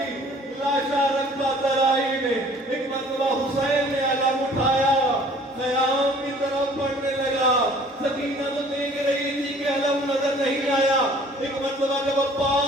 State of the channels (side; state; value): both; normal; correlation 0.53